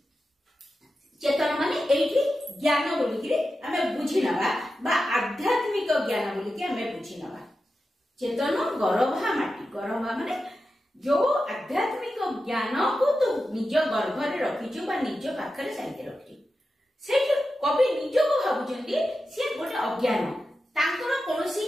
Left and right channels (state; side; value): normal; both; correlation 0.91